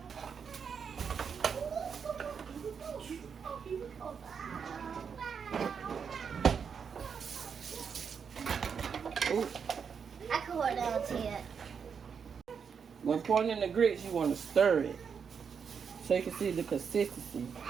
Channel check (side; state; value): left; quieter; 6.6 dB